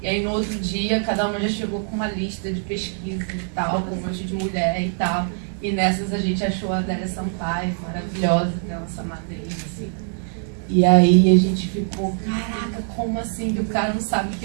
E aí no outro dia, cada uma já chegou com uma lista de pesquisa e tal, com um monte de mulher e tal. E nessas a gente achou a Adélia Sampaio, maravilhosa, que é a nossa madrinha, assim. E aí a gente ficou, caraca, como assim que o cara não sabe que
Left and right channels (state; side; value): silent; left; 59 dB below the other